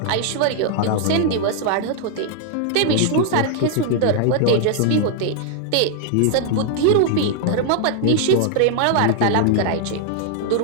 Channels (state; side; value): different; both; correlation 0.00